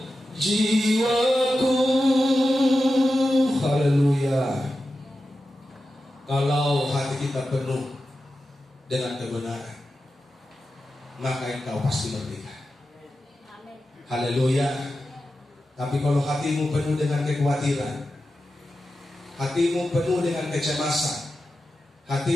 jiwaku. Haleluya. Kalau hati kita penuh dengan kebenaran, maka engkau pasti merdeka. Haleluya. Tapi kalau hatimu penuh dengan kekhawatiran, hatimu penuh dengan kecemasan,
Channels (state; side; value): normal; both; correlation 0.92